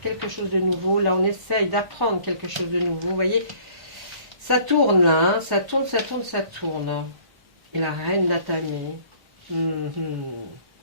quelque chose de nouveau. Là, on essaye d'apprendre quelque chose de nouveau. Vous voyez, ça tourne là, hein, ça tourne. Et la reine d'Atami.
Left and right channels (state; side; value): late; left; 1.4 ms